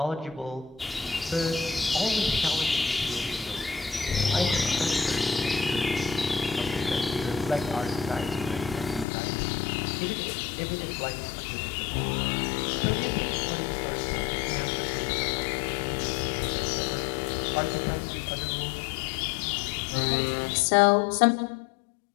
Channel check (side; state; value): right; drops out; at 9.1 s